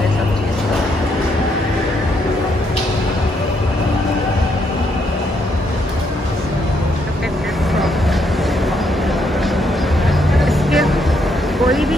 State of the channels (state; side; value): normal; both; correlation 0.75